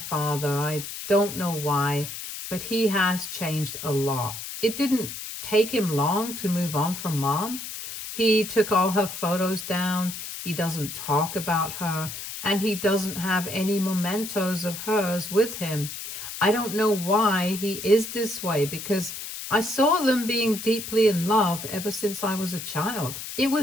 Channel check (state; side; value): noise; left; hiss, 8 dB below the sound